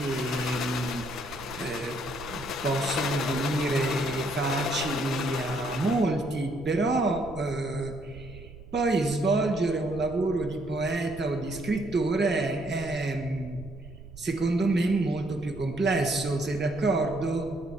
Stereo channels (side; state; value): right; noise; rumble, 16 dB below the sound